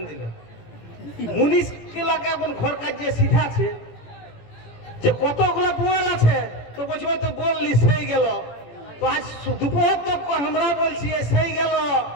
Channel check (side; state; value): right; late; 17 ms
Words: দিল। মুনিশ গুলাকে এখন ঘর কাজ যে শিখাচ্ছে যে কতগুলা পোয়াল আছে, তো বলছি ওই তো বললি সেই গেল। তো আজ দুপুর তক আমরা বলছি সেই গেল,